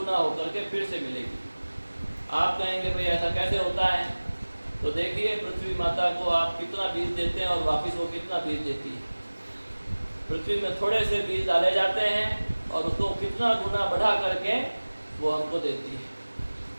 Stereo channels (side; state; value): both; inverted; correlation -1.00